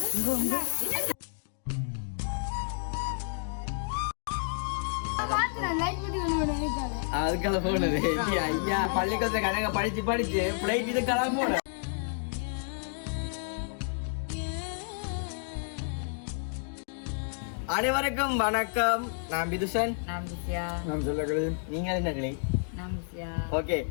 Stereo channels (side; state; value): right; silent; digital silence